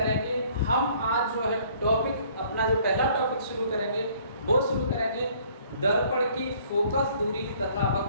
हम आज जो है टॉपिक अपना जो पहला टॉपिक शुरू करेंगे वो शुरू करेंगे दर्पण की फोकस दूरी तथा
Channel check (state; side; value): inverted; both; correlation -0.59